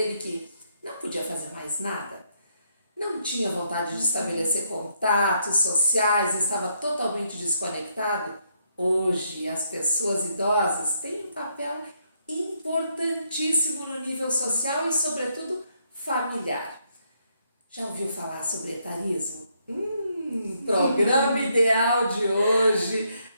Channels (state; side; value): inverted; both; correlation -0.74